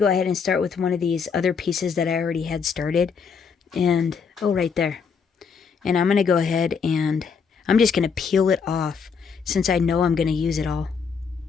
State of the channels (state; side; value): quieter; right; 5.9 dB